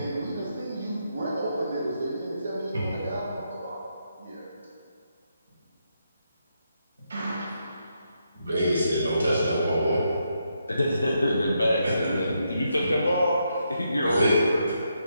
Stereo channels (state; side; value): inverted; both; correlation -0.80